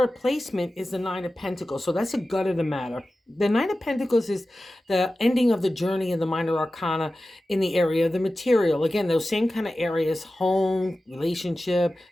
placement is the Nine of Pentacles. So that's a gut of the matter. The Nine of Pentacles is the ending of the journey in the minor arcana in the area of the material. Again, those same kind of areas, home, relationship,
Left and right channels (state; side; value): normal; both; correlation 0.95